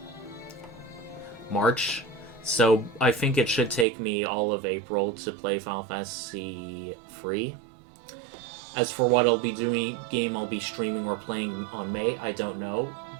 March, so I think it should take me all of April to play Final Fantasy 3. As for what I'll be doing, game I'll be streaming or playing on May, I don't know,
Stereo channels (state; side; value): drops out; left; at 3.9 s